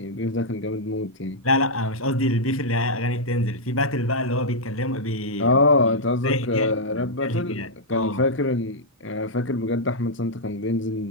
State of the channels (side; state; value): both; normal; correlation -0.07